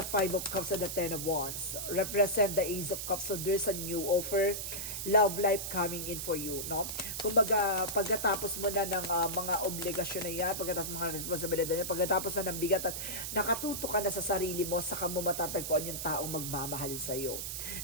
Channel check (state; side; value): noise; right; hiss, 4 dB below the sound